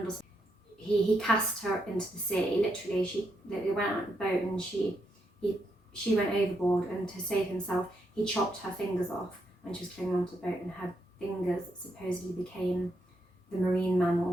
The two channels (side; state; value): both; normal; correlation 0.80